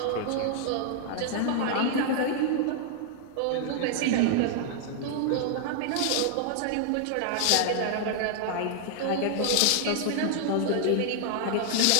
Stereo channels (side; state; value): both; different; correlation 0.00